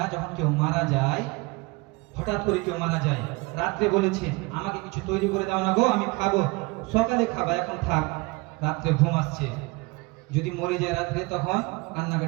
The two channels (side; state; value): left; quieter; 25.6 dB